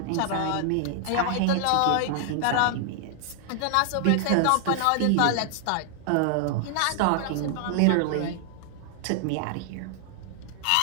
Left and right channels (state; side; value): different; both; correlation 0.00